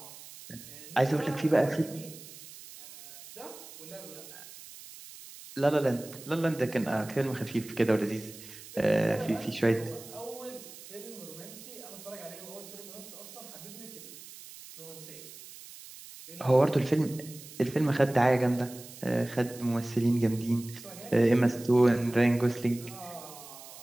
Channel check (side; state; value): right; noise; hiss, 16 dB below the sound